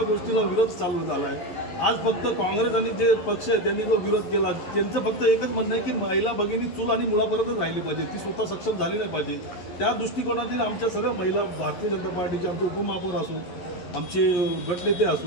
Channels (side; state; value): right; late; 11 ms